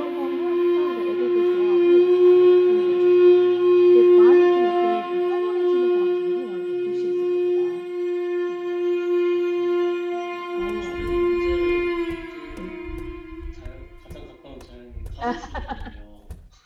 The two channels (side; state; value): both; identical; correlation 1.00